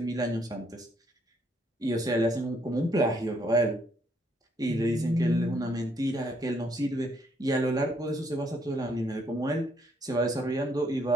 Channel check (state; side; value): normal; both; correlation 0.70